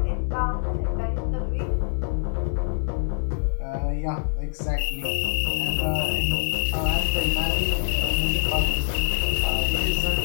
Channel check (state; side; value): silent; right; digital silence